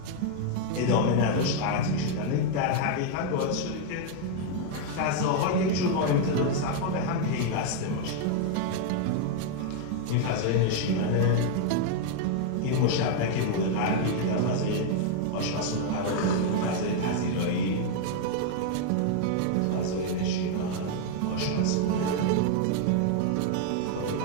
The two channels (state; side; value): different; both; correlation 0.00